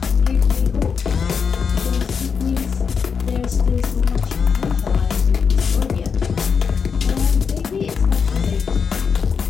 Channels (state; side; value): quieter; right; 6.1 dB